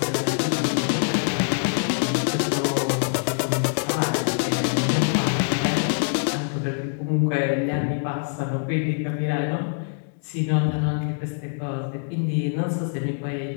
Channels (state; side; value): silent; right; 62 dB below the other